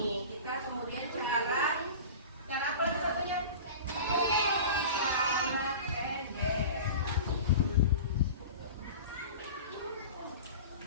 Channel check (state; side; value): inverted; both; correlation -0.35